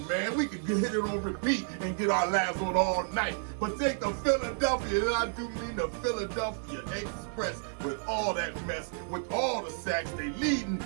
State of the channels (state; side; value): silent; left; 57 dB below the other